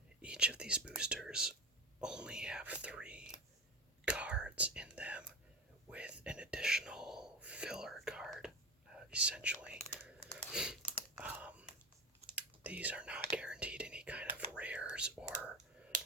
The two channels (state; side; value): normal; both; correlation 0.24